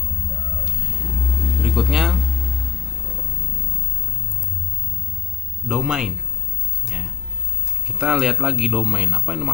Berikutnya domain. Ya. Kita lihat lagi domain. Apa yang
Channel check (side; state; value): right; quieter; 8.3 dB